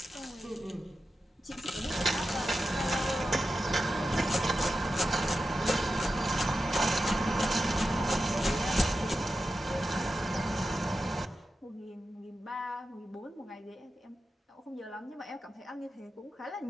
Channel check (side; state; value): both; normal; correlation 0.91